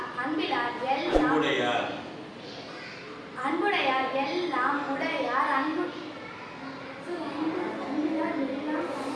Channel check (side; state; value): both; identical; correlation 1.00